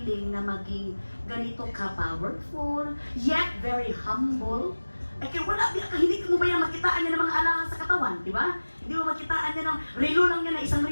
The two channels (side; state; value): both; inverted; correlation -1.00